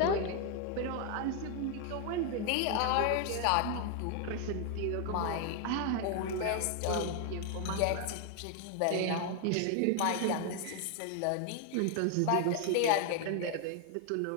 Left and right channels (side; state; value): both; different; correlation 0.00